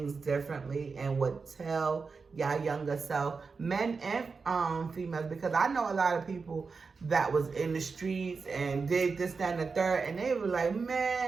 differently and would tell y'all younger self, men and females, because I know a lot of people that was in the streets and did this, that, and the third, and they were like,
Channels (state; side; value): quieter; left; 4.8 dB